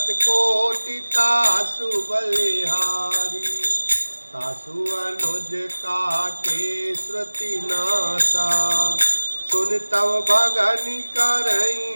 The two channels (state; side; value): inverted; both; correlation -1.00